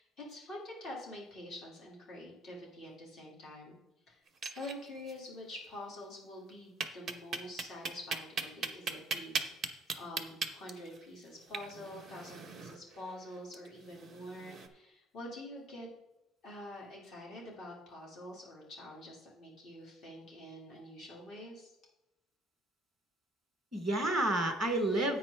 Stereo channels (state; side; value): normal; both; correlation 0.59